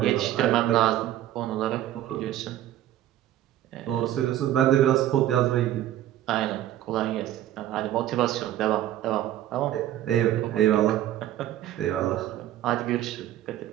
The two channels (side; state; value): left; quieter; 12.9 dB